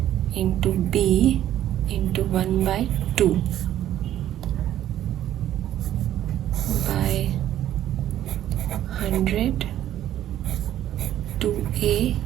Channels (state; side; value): quieter; left; 12.1 dB